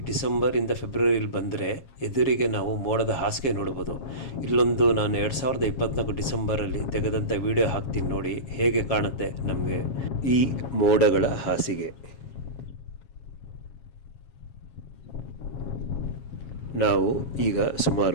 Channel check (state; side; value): late; right; 7.3 ms